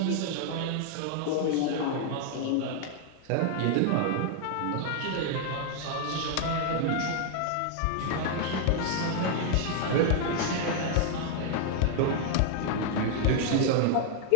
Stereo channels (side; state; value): both; different; correlation 0.00